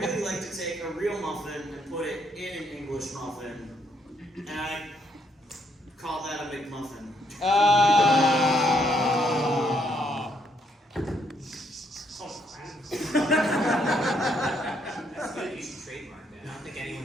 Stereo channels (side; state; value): both; normal; correlation 0.73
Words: like to take a real muffin and put it in an English muffin, and I call that a McMuffin. That's good. You should trademark that. I don't think